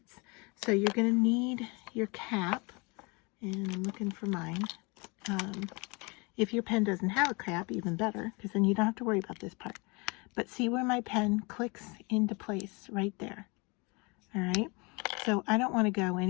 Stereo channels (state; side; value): quieter; right; 29.0 dB